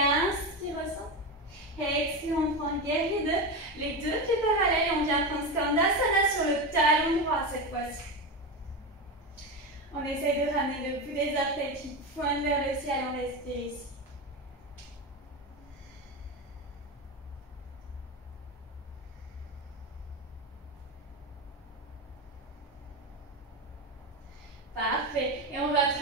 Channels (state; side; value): normal; both; correlation 0.18